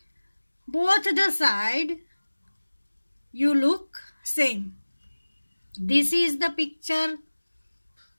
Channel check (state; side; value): inverted; both; correlation -1.00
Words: both the side you look same. This is the picture